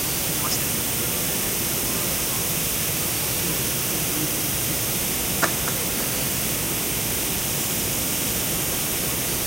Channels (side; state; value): right; noise; hum, 14 dB below the sound